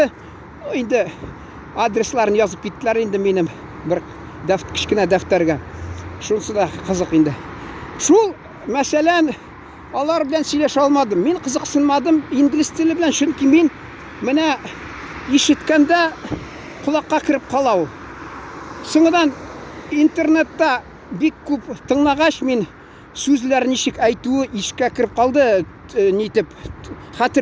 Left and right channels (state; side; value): identical; both; correlation 1.00